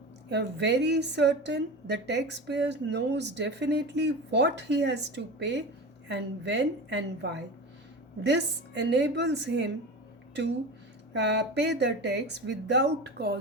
very certain the taxpayer knows definitely what he has to pay and when and why. This enables him to pay the tax without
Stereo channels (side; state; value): both; normal; correlation 0.29